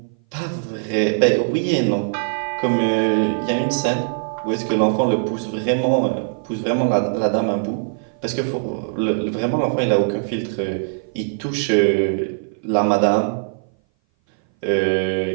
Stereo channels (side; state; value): left; silent; 58 dB below the other